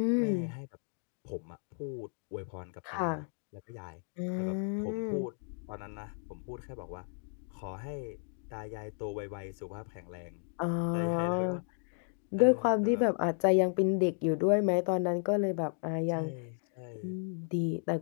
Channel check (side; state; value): right; silent; 55 dB below the other